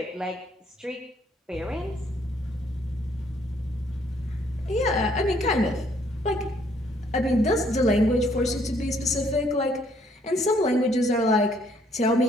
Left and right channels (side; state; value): both; normal; correlation 0.66